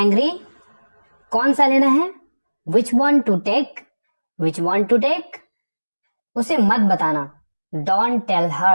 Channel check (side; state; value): both; inverted; correlation -1.00